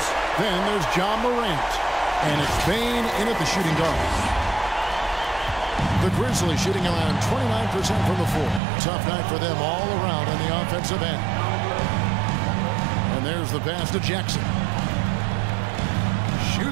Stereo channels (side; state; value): left; drops out; at 8.6 s